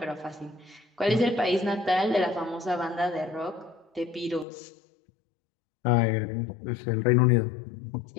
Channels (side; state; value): right; drops out; at 4.5 s